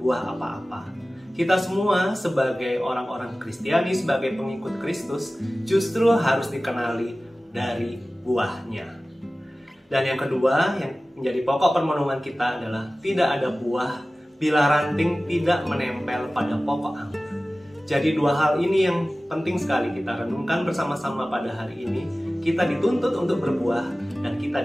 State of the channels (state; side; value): normal; both; correlation 0.97